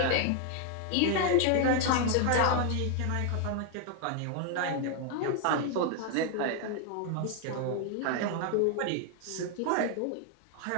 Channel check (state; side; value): different; both; correlation 0.00